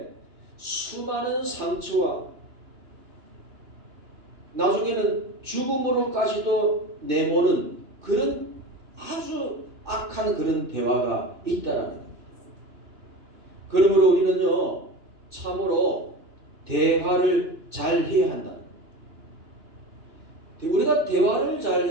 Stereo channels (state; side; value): late; left; 2.9 ms